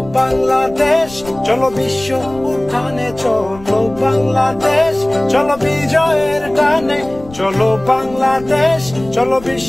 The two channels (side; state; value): left; noise; rumble, 19 dB below the sound